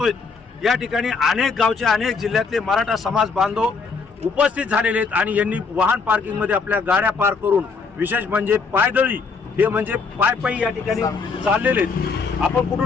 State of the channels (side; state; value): right; quieter; 4.8 dB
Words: या ठिकाणी अनेक गावचे, अनेक जिल्ह्यातले मराठा समाज बांधव उपस्थित झालेले आहेत आणि यांनी वाहन पार्किंग मध्ये आपल्या गाड्या पार्क करून, विशेष म्हणजे पायदळी, हे म्हणजे पायी या ठिकाणी चाललेले आहेत. आपण